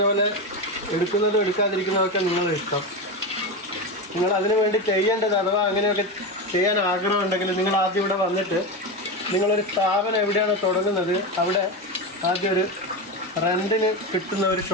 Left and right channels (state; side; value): normal; both; correlation 0.18